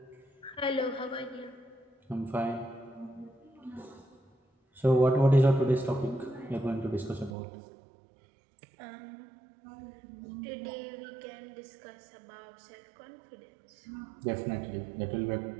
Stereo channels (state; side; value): drops out; left; at 7.3 s